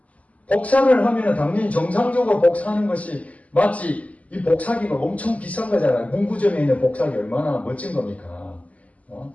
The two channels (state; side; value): late; right; 0.071 ms